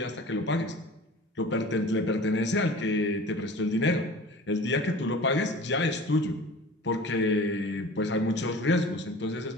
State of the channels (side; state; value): both; normal; correlation 0.41